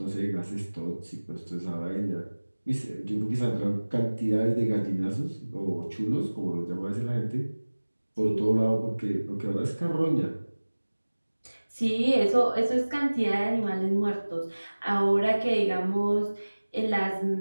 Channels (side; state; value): both; inverted; correlation -1.00